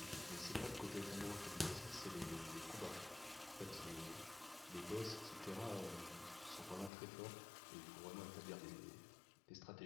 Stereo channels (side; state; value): right; drops out; at 6.9 s